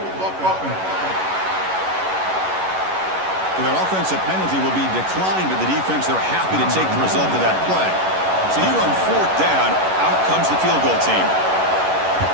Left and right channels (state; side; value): late; left; 11 ms